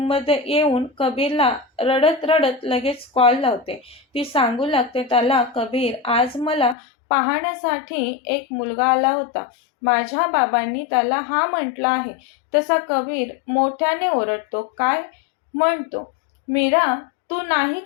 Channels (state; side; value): drops out; right; at 6.8 s